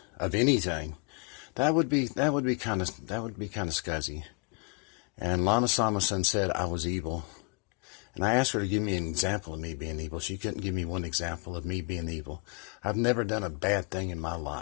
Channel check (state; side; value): quieter; right; 34.3 dB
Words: of anything, that would be kind of scuzzy. And Lana Samason said I was evil. And I asked her to give me an example of me being evil. She couldn't give me one example of me being evil. I've never done a bad thing in my